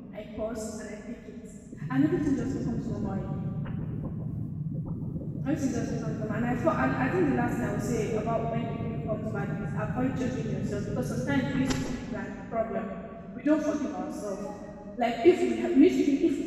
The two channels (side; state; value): both; identical; correlation 1.00